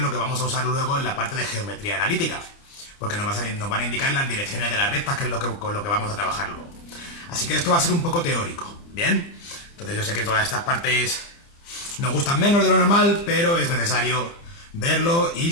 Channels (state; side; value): late; right; 29 ms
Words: que vamos a usar luego en la parte de geometría analítica. Porque nos van a indicar las direcciones de las rectas, que es con lo que vamos a trabajar luego. Así que esto va a ser un poco teórico, ¿bien? Entonces yo sé que todas estas partes nos gustan menos de lo normal, pero es necesario verlo y